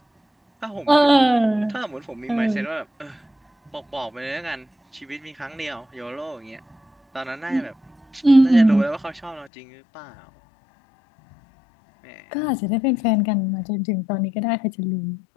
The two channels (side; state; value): right; drops out; at 9.5 s